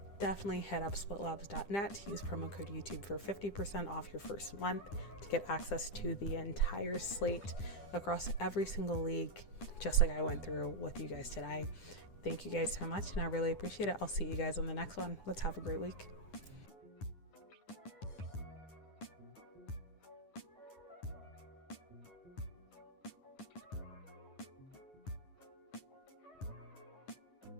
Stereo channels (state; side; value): late; right; 10 ms